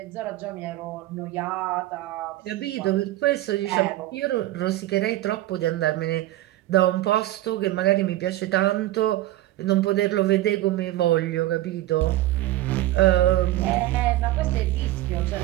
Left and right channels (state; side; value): quieter; left; 15.6 dB